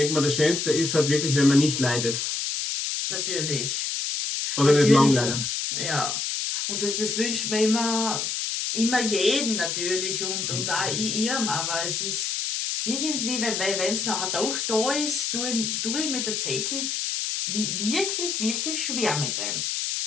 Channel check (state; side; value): noise; left; hiss, 1 dB below the sound